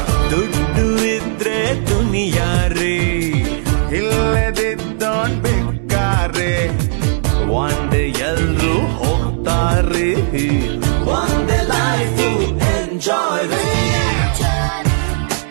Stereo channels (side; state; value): left; silent; 69 dB below the other